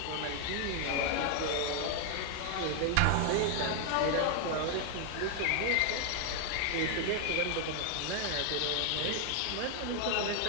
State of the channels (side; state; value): both; different; correlation 0.00